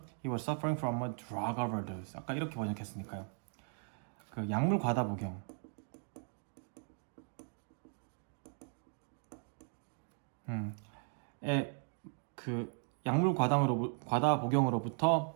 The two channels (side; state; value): left; silent; 53 dB below the other